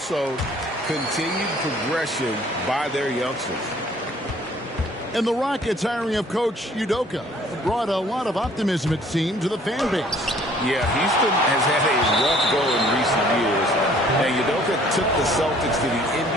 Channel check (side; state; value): both; normal; correlation 0.57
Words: continued progression by their youngsters. And the Rockets hiring of Coach Udoka brought a lot of optimism, it seemed, to the fan base. Yeah, Houston has had a rough go in recent years. And Udoka took the Celtics to the